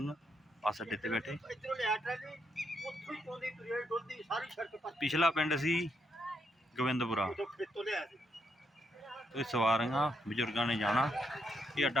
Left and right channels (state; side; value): normal; both; correlation 0.78